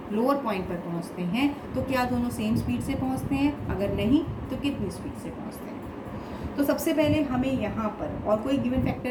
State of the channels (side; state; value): both; identical; correlation 1.00